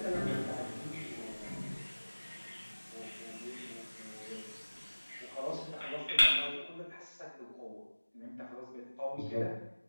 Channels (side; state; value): both; inverted; correlation -1.00